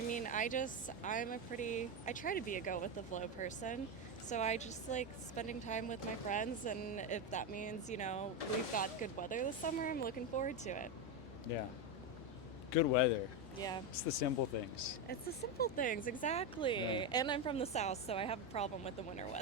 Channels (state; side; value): normal; both; correlation 0.10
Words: I try to be a go with the flow person. So I just like spending time with my friends, and if that means, we've got good weather this summer, I'm looking forward to it. Yeah. Good weather. Yeah. It's the simple things. It's the simple things, exactly. Yeah. And I'm from the South, so I have a problem with the winter